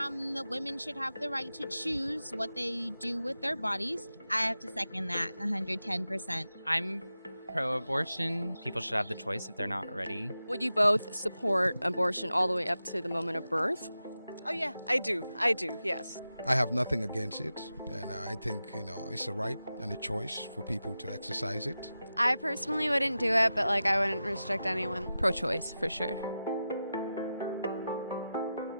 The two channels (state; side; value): inverted; both; correlation -0.92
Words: the women should have the right to choose what they do with their bodies. I have to second that 110%. I'm pro-abortion. People should have the choice if they're not ready. Would you both support abortion all the way up to the moment of birth? Oh yeah, I do, yes. I have nothing against it, and I think, it's a right and a choice for people to exercise it. I personally wouldn't do it, but I wouldn't restrict anyone. Pro-choice, for sure.